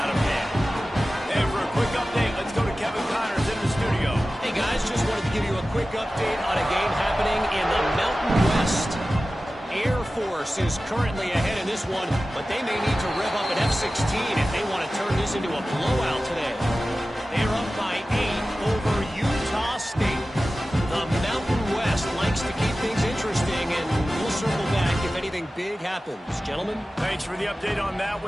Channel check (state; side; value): normal; both; correlation 0.96